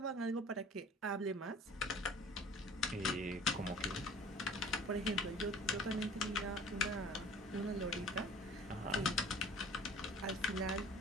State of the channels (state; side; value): normal; both; correlation 0.47